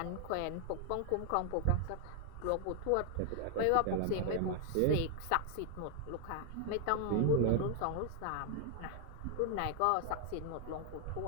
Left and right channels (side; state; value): both; different; correlation 0.00